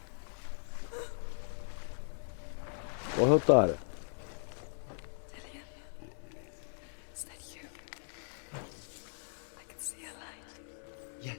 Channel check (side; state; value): right; silent; 53 dB below the other